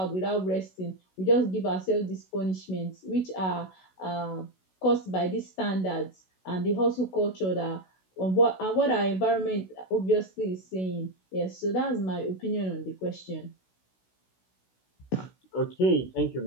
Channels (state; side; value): late; right; 16 ms